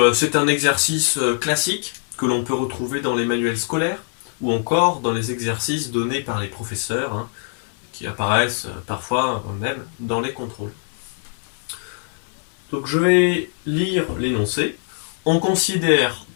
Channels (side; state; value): right; silent; 64 dB below the other